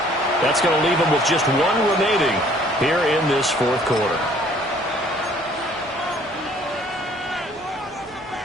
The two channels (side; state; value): both; normal; correlation 0.58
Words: That's going to leave them with just 1 remaining here in this 4th quarter.